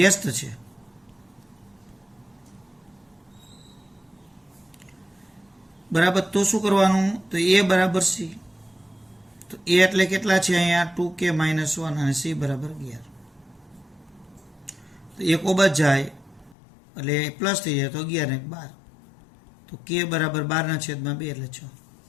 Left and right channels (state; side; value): drops out; right; at 16.6 s